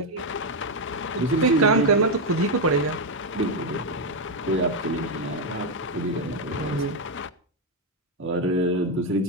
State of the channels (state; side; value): normal; both; correlation 0.04